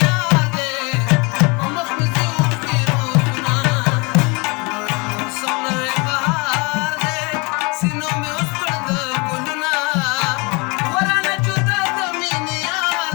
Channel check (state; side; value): quieter; right; 28.9 dB